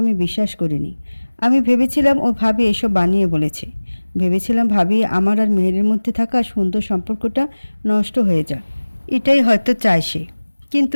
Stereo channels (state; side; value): inverted; both; correlation -1.00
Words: আমি বিশ্বাস করিনি। আমি ভেবেছিলাম ও ভাবি এসব বানিয়ে বলেছে। ভেবেছিলাম ভাবি আমার আর মেহেরের মধ্যে থাকা সুন্দর সম্পর্কটা নষ্ট হয়ে যাক, এটাই হয়তো চায় সে।